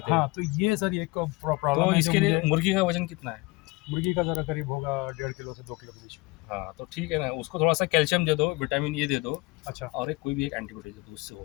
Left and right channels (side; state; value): right; quieter; 23.9 dB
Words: हैं. हाँ, तो ये सर एक प्रॉब्लम तो है इसके जो लिए मुझे- मुर्गी का वजन कितना है? मुर्गी का जरा करीब होगा 1.5 किलो से 2 किलो के बीच में. हाँ, तो ठीक है ना, उसको थोड़ा सा कैल्शियम दे दो, विटामिन ए दे दो, अच्छा, और कोई भी एक एंटीबायोटिक दे दो, उससे हो